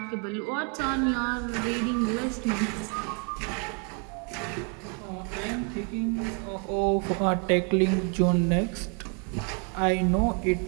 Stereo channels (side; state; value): left; quieter; 37.9 dB